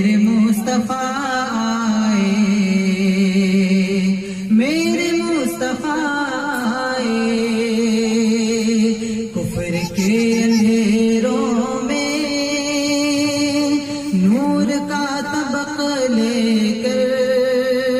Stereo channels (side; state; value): both; identical; correlation 1.00